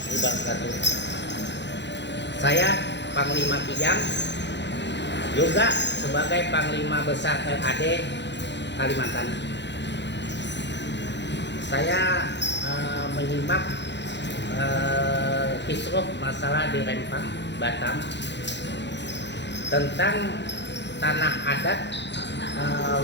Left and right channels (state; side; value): late; right; 0.51 ms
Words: wabarakatuh. Saya Panglima Kijang, juga sebagai Panglima Besar LAD Kalimantan. Saya menyimak kisruh masalah di Rempang, Batam, tentang tanah adat